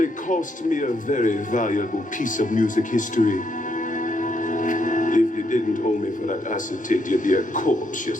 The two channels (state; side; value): normal; both; correlation 0.76